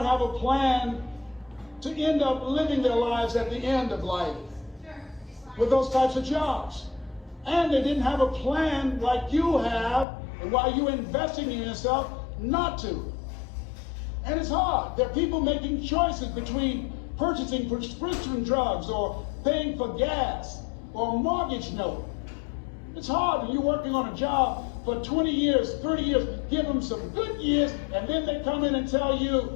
have a plan to end up living their lives at the end of life with those types of jobs. And they didn't have a plan like you have, and why you're investing in yourself not to. And it's hard. There are people making choices between purchasing prescription drugs or paying for gas or a mortgage note. It's hard when you're working on a job for 20 years, 30 years, give them some good years, and then they come in and tell you,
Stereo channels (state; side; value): drops out; right; at 10.1 s